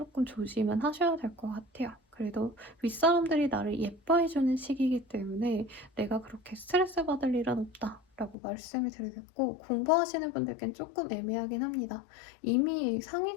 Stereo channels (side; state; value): right; drops out; at 8.3 s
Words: 조심은 하셔야 될 것 같아요. 그래도 윗사람들이 나를 예뻐해주는 시기이기 때문에 내가 그렇게 스트레스 받을 일은 없다라고 말씀을 드리겠고 공부하시는 분들께는 조금 애매하긴 합니다. 이미